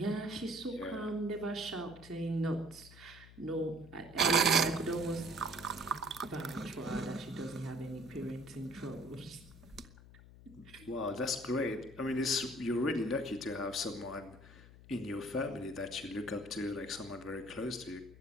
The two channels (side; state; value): left; noise; hum, 19 dB below the sound